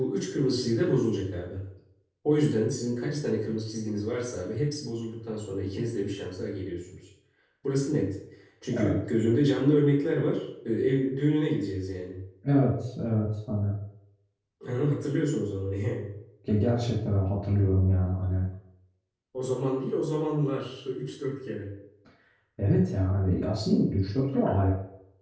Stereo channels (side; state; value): both; identical; correlation 1.00